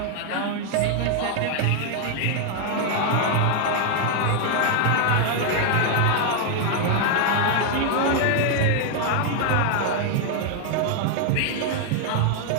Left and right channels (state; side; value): different; both; correlation 0.00